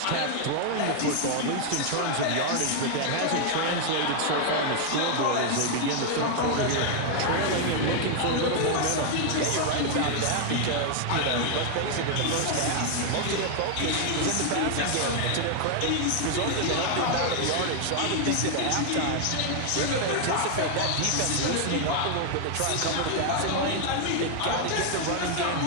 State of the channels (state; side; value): different; both; correlation 0.00